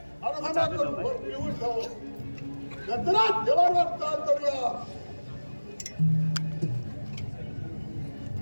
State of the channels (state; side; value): inverted; both; correlation -1.00